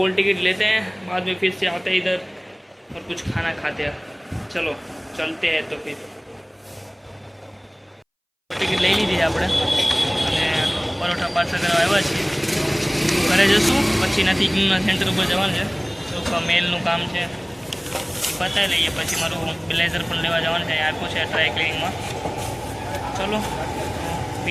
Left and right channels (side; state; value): both; identical; correlation 1.00